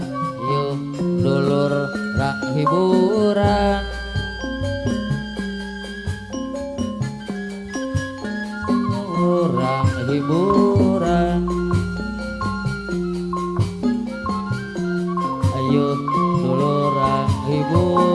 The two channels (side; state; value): both; identical; correlation 1.00